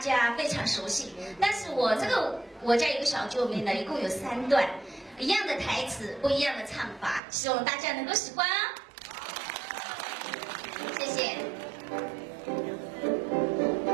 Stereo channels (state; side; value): drops out; left; at 7.2 s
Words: 非常熟悉。但是我家有个小九妹呢，一共有3段，一样的台词，不一样的唱法，希望大家能够喜欢啊！谢谢。